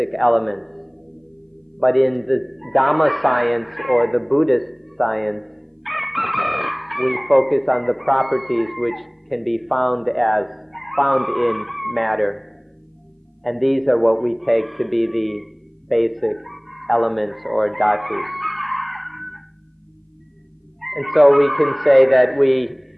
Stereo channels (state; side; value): identical; both; correlation 1.00